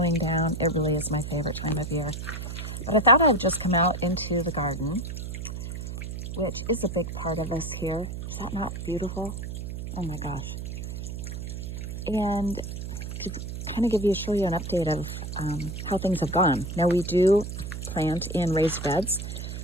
down, it really is my favorite time of year. But I thought I'd just come out into the garden, which is a big part of us here. Is that not beautiful? Oh my gosh. And to kind of show you an update of how things have gone. Now we do plant in raised beds.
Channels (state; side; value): noise; right; hum, 6 dB below the sound